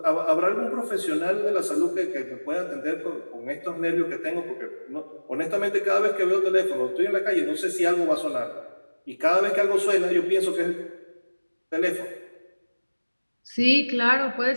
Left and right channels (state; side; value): inverted; both; correlation -1.00